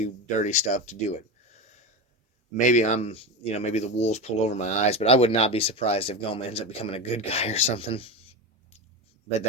dirty stuff to do it. Maybe maybe the wool's pulled over my eyes, but I would not be surprised if Goma ends up becoming a good guy or something. But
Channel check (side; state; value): both; normal; correlation 0.20